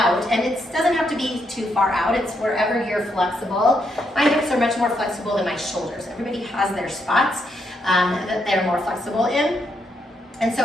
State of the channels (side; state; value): both; normal; correlation 0.78